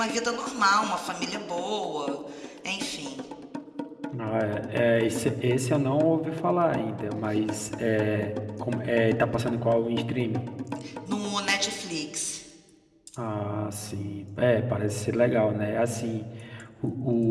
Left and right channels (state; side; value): identical; both; correlation 1.00